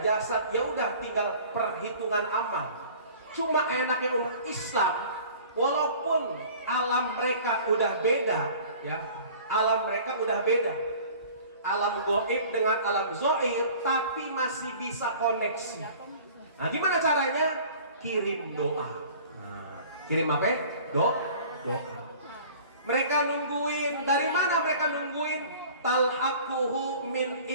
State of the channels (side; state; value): both; inverted; correlation -0.46